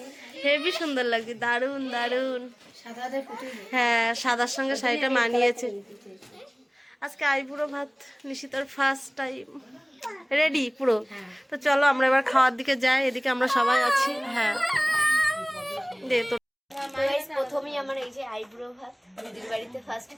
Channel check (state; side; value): identical; both; correlation 1.00